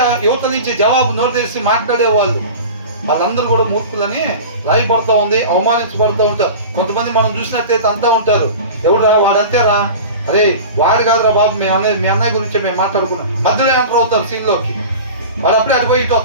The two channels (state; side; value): inverted; both; correlation -0.34